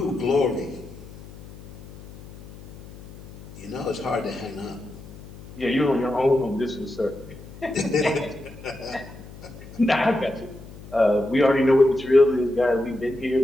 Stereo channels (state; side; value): noise; left; hum, 17 dB below the sound